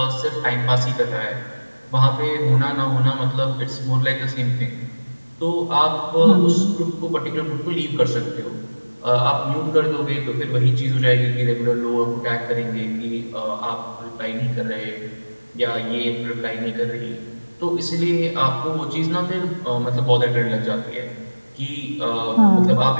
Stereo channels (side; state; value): both; inverted; correlation -1.00